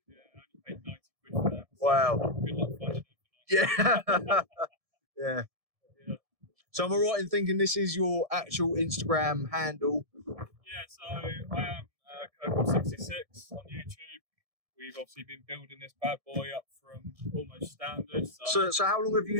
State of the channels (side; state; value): left; late; 1.7 ms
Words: Yeah, I only paid 90 quid for that. Wow. Good luck finding it. Yeah. Yeah. So am I right in thinking this is your actual Instagram handle? Yeah, so I am Kirkham66 on YouTube. We've obviously been building this bad boy up from almost standard. So how long have